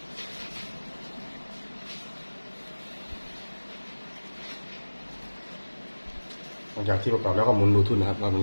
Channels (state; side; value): inverted; both; correlation -1.00